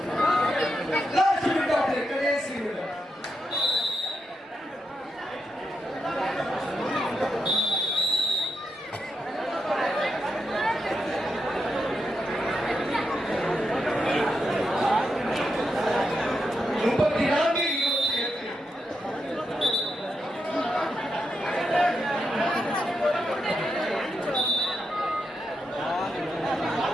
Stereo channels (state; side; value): normal; both; correlation 0.84